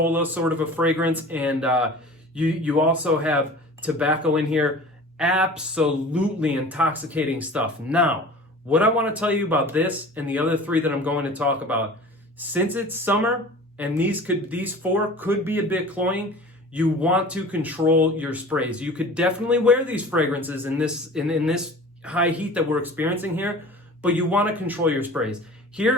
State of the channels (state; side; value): normal; both; correlation 0.41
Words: sort of a fragrance, and you also have tobacco in here. Absolutely intoxicating stuff. Now, what I want to tell you about this and the other three that I'm going to talk about, since it's summer and these four could be a bit cloying, you want to control your sprays. You could definitely wear these fragrances in this high heat that we're experiencing here, but you want to control your sprays.